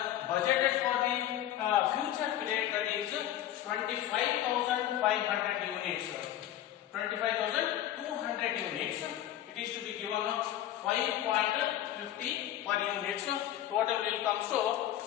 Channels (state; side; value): quieter; right; 12.5 dB